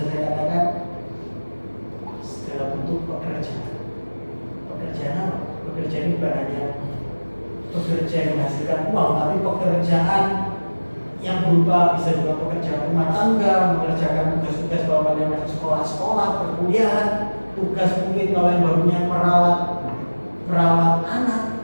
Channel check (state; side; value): inverted; both; correlation -1.00